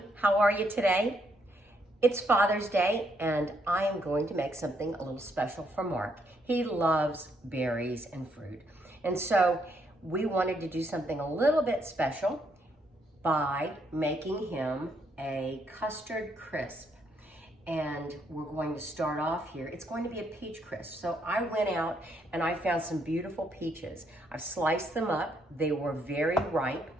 how are you today? It's Father's Day and I am going to make something a little special for Mark. He loves berries and fruit. And so we wanted to do something a little bit special by making him a custard crisp. And we're going to start off here. It's going to be a peach crisp. So I went out and I found some beautiful peaches. I've sliced them up. They were very ripe.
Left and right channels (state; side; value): normal; both; correlation 0.73